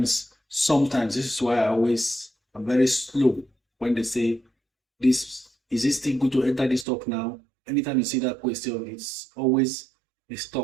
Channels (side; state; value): left; drops out; at 6.9 s